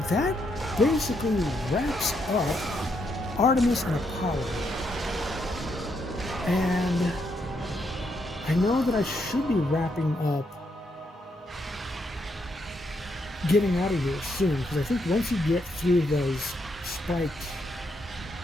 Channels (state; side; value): normal; both; correlation 0.77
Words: that basically wraps up Artemis and Apollo. And I know that I should be wrapping up, getting out of here soon, because I think once you get through those spiked